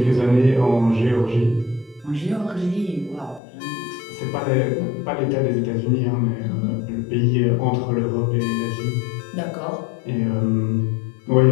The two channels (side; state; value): right; drops out; at 3.4 s